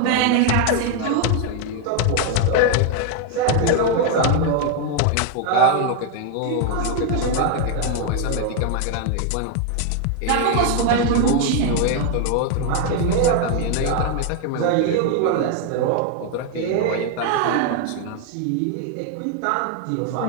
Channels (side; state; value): both; different; correlation 0.00